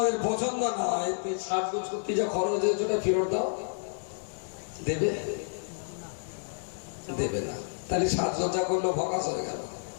পছন্দ না হয়, সাজগোজ করতে যা খরচ হয়েছে ওটা ফেরত দাও, দেবে? দেবে না। তাহলে সাজগোজা করলো ফকাস হয়ে গেল।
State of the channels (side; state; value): right; silent; digital silence